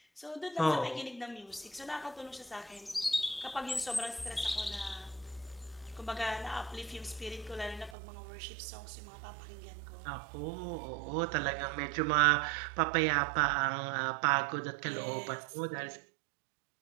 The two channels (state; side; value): drops out; left; at 8.0 s